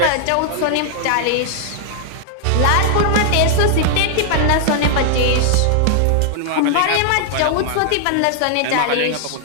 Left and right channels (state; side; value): different; both; correlation -0.01